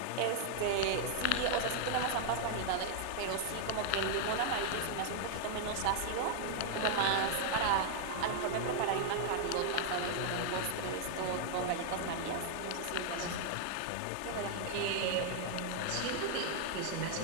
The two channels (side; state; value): both; different; correlation 0.00